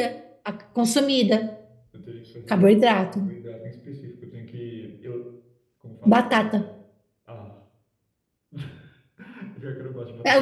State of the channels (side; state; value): both; identical; correlation 1.00